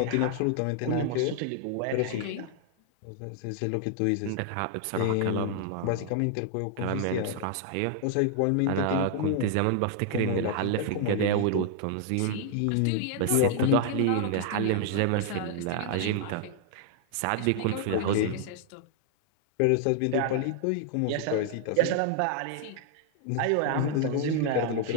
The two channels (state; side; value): different; both; correlation 0.00